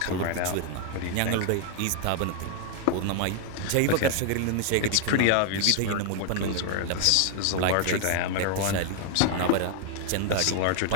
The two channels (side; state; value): both; different; correlation 0.00